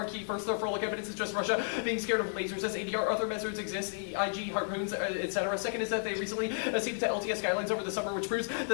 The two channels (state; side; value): silent; right; digital silence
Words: key. First, their frolic evidence is just Russia being scared of lasers as ADR. Other measures exist, IG, harpoons, etc. Second is that they recently ceded to LTS guidelines over the summer, which proves that